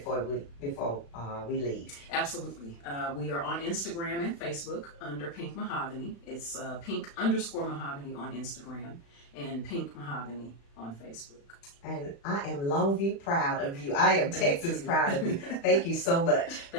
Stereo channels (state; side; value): late; right; 35 ms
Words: we leave? Absolutely. We are on Instagram and Facebook under Pink MahogHany. It's Pink_Mahogany on Instagram and Pink MahogHany on Facebook. And I am Longview proud of you. I am Texas proud of you. Thank you so much.